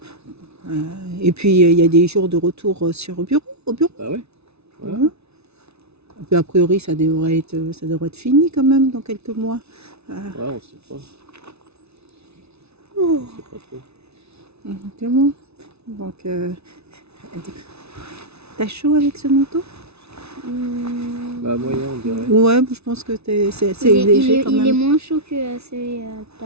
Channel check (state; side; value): late; left; 0.80 ms